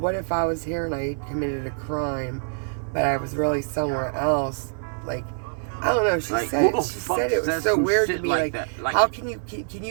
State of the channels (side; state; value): left; silent; 62 dB below the other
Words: if I was here and I committed a crime, but I was really somewhere else? Like, I don't know. She Like, said who the it. She fuck said it was says so some weird to shit me. like Like, that? Like- how can